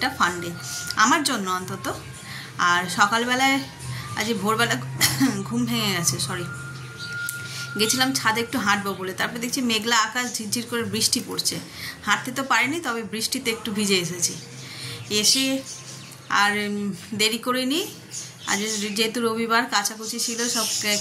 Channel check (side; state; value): both; identical; correlation 1.00